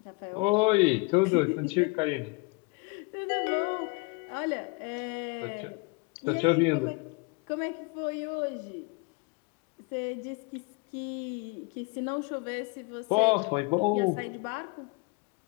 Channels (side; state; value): right; quieter; 29.5 dB